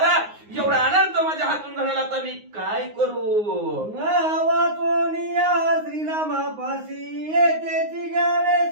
एवढा अनर्थ माझ्या हातून घडला तर मी काय करू. वाचोनिया श्रीरामापाशी येतेची घ्यावे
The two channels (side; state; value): left; late; 9.6 ms